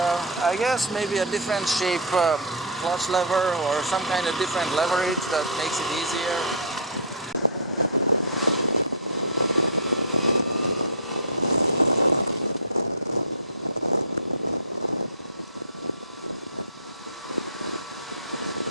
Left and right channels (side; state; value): both; normal; correlation -0.15